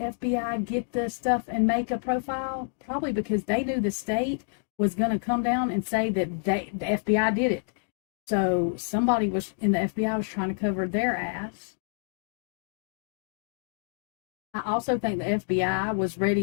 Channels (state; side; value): silent; right; digital silence